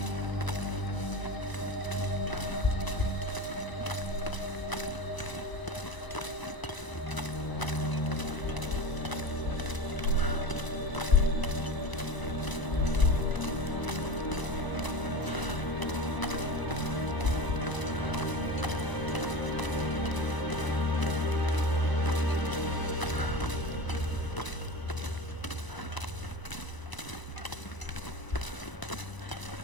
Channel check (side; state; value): right; late; 1.0 ms